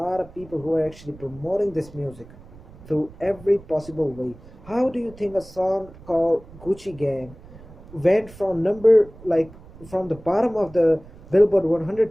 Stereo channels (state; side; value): noise; right; rumble, 20 dB below the sound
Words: of people who are actually promoting this music through every possible way. How do you think a song called Gucci Gang went from from the bottom of the Billboard 100